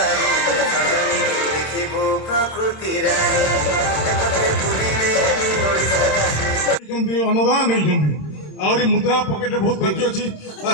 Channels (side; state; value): right; late; 27 ms